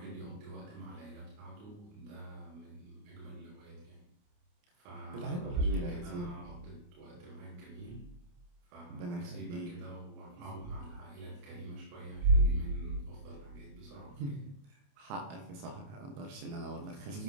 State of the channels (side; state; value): left; late; 29 ms